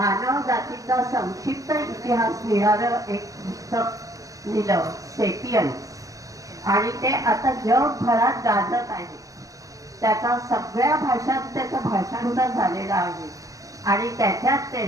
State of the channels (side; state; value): left; late; 0.16 ms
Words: जातीचा संक्षिप्त इतिहास लिहिणारं एक पुस्तक लिहिलं, सेपियन्स. आणि ते आता जगभरात गाजत आहे. त्याचा सगळ्या भाषात त्याचं भाषांतर झालेलं आहे. आणि त्याच्यात